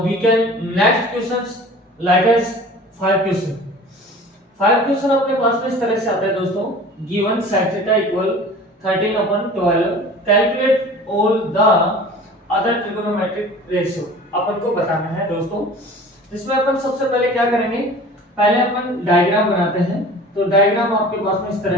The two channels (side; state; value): both; normal; correlation 0.42